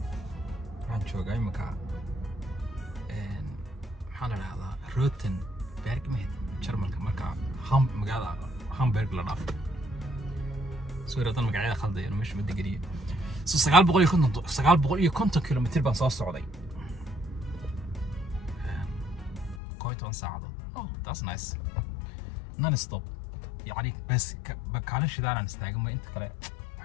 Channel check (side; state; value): right; drops out; at 19.6 s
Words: عن شو جاي مكان حنا هذا روتن بيرج مهد شرمل كمكان مقعد هامبرغ لناف سوري أنا مقعد خالد يعني مش مدقري سجال بقول يكونتم كيلومتر بس السعودية كويتون ساعة that's nice non stop يعني بس بكالش دارنا نستعجل أنت كلا